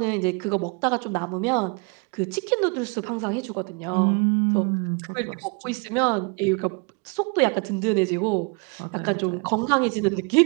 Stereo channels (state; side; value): quieter; left; 33.5 dB